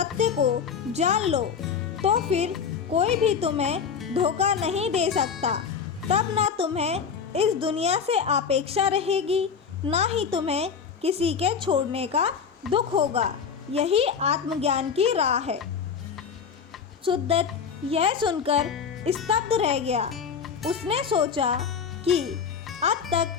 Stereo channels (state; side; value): quieter; right; 6.5 dB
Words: को जान लो, तो फिर कोई भी तुम्हें धोखा नहीं दे सकता। तब ना तुम्हें इस दुनिया से अपेक्षा रहेगी, ना ही तुम्हें किसी के छोड़ने का दुख होगा। यही आत्मज्ञान की राह है। सुद्दत यह सुनकर स्तब्ध रह गया। उसने सोचा कि अब